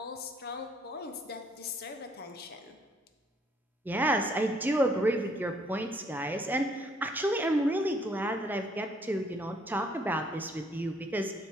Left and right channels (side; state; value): both; normal; correlation 0.65